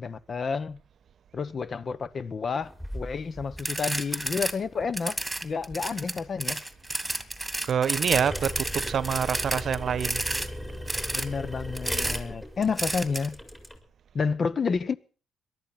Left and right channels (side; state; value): both; normal; correlation 0.83